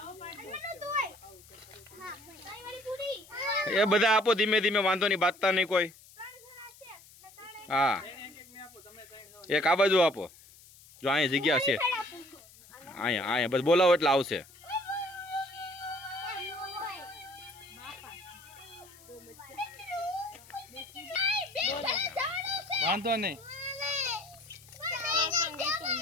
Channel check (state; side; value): noise; left; hiss, 23 dB below the sound